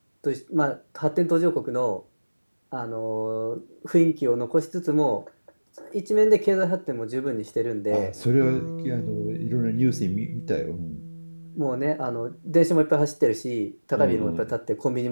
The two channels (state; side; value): inverted; both; correlation -1.00